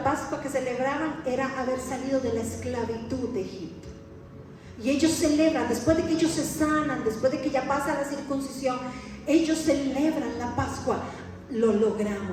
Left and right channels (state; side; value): identical; both; correlation 1.00